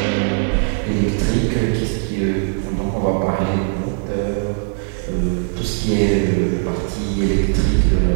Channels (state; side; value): silent; left; digital silence